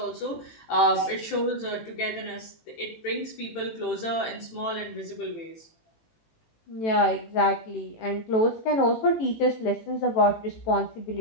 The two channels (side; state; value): right; late; 18 ms